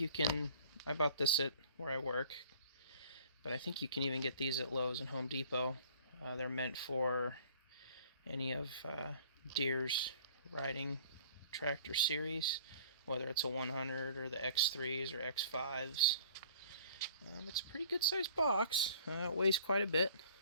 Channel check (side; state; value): both; inverted; correlation -0.50